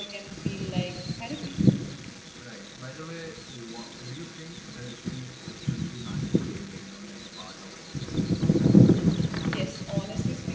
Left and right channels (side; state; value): both; identical; correlation 1.00